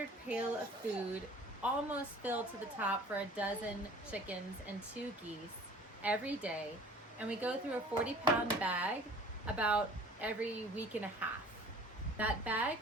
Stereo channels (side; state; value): both; normal; correlation 0.48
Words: pail of food almost filled to the top for a dozen chickens and 2 geese every day. And we go through a 40-pound bag about every week and a half. That bag